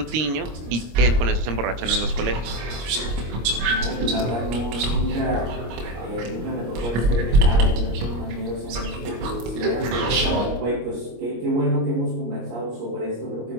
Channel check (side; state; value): left; late; 25 ms